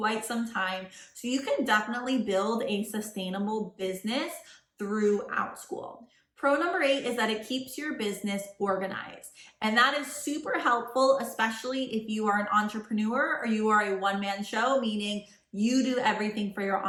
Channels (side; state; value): both; identical; correlation 1.00